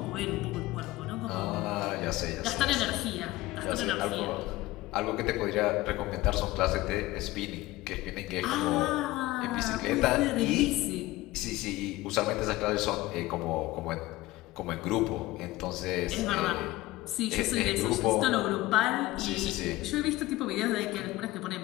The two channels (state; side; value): quieter; right; 18.3 dB